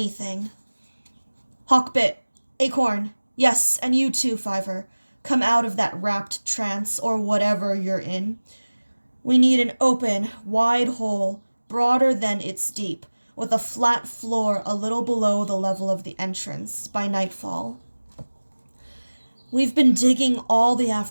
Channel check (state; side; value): inverted; both; correlation -1.00